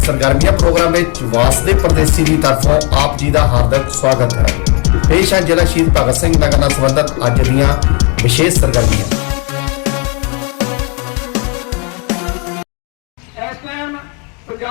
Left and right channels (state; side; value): quieter; right; 33.9 dB